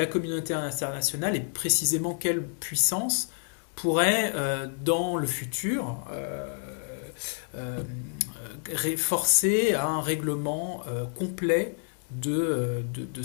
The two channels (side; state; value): right; silent; 59 dB below the other